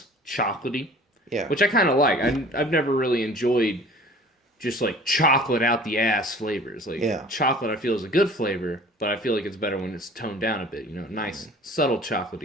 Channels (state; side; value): normal; both; correlation 0.47